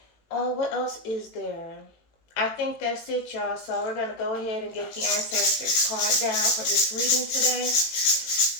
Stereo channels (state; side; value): late; right; 18 ms